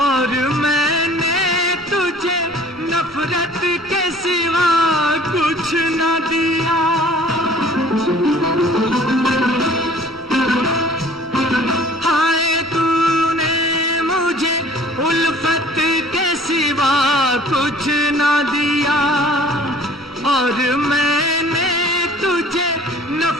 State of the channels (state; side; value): normal; both; correlation 0.51